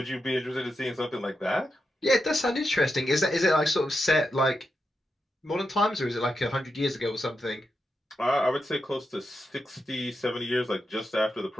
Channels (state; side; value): normal; both; correlation 0.87